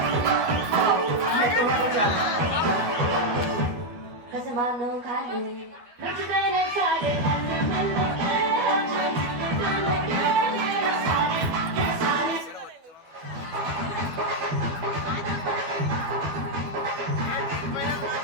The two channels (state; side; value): late; left; 12 ms